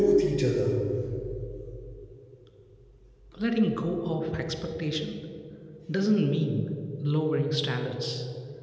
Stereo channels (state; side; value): identical; both; correlation 1.00